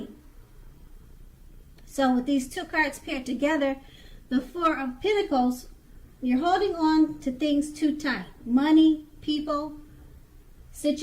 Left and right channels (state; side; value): identical; both; correlation 1.00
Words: So with these two cards paired together, the Four of Pentacles, you're holding on to things too tight. Money, people,